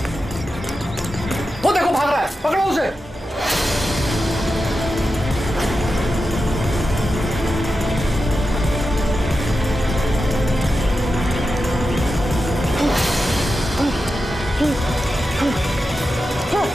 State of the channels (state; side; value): normal; both; correlation 0.90